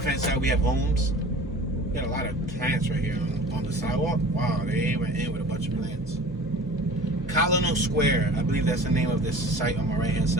hand side we have homes. We got a lot of plants right here on the sidewalk. Wow, they went in with a bunch of plants. Colonel Square, I believe that's the name of this site on my right hand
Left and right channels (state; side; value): normal; both; correlation 0.42